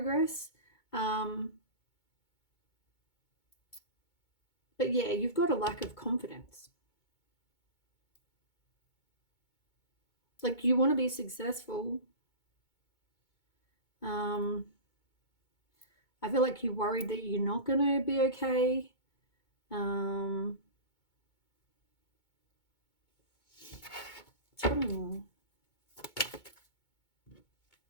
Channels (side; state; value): right; late; 2.2 ms